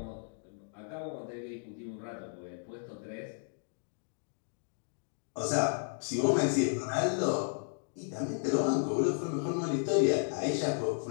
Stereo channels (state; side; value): silent; right; digital silence